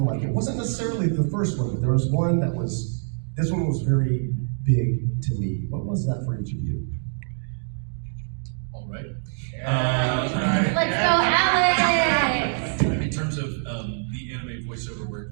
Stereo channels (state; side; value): silent; left; digital silence